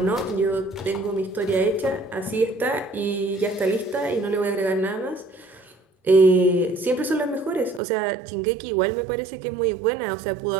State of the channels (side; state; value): left; drops out; at 7.8 s